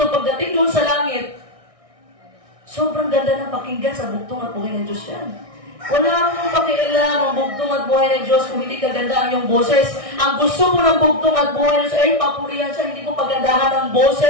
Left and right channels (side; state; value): left; late; 1.6 ms